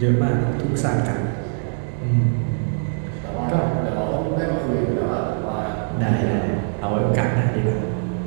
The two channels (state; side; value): silent; left; digital silence